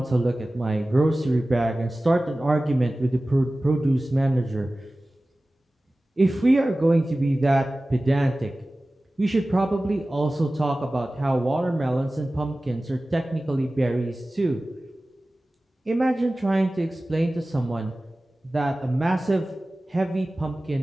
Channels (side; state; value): both; normal; correlation 0.97